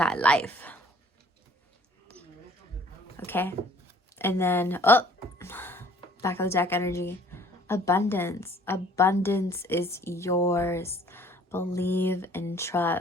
life. Okay? And then, back of the deck energy. Abundance. Abundance is yours. Believe and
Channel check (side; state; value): both; normal; correlation 0.55